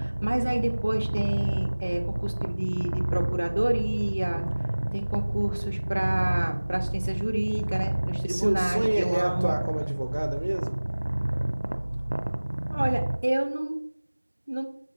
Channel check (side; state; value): both; inverted; correlation -1.00